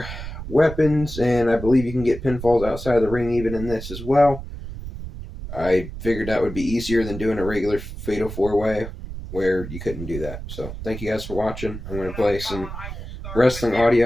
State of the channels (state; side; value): noise; right; rumble, 10 dB below the sound